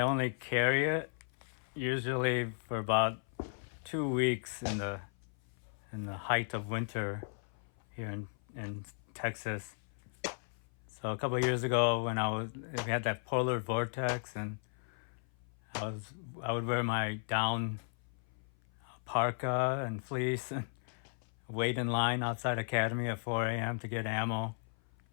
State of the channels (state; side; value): silent; right; 54 dB below the other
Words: only carry it usually for about 2 weeks in the height of winter here in Texas. So a couple of years ago, when we had that polar vortex, and I would wear my down parka and fleece and wait in line outside Academy at 4 a.m. to get ammo,